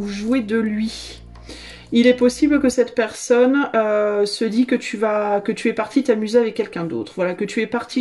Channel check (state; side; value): identical; both; correlation 1.00